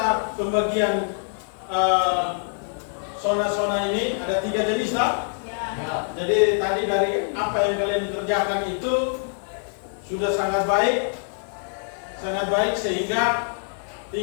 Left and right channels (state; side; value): silent; right; 62 dB below the other